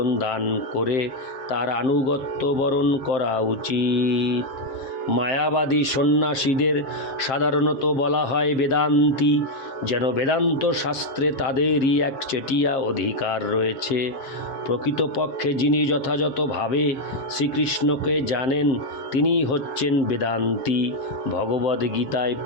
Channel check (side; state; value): right; late; 7.6 ms